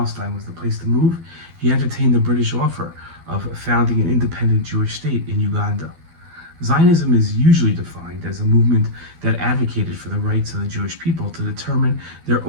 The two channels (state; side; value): late; left; 12 ms